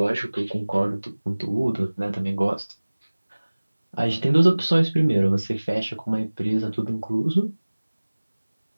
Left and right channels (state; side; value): inverted; both; correlation -1.00